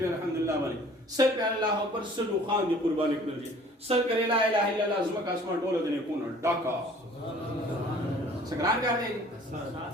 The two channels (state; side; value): normal; both; correlation 0.52